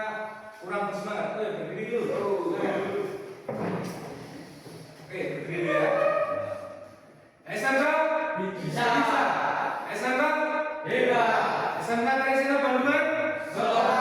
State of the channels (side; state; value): both; identical; correlation 1.00